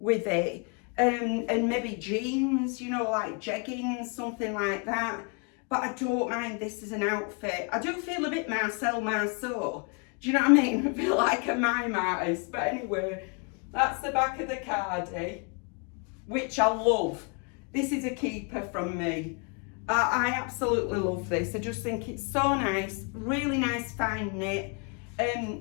with it, and maybe jeans, you know, like jeggings, something like that. But I don't mind this as an outfit. I do feel a bit Marcel Marceau. Do you know what I mean? I feel like a mime artist. But anyway, that's the back of the cardie, which I love. This is a keeper from me. I absolutely love this. I just think it's so nice, really nice fine knit.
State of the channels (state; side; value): quieter; right; 35.8 dB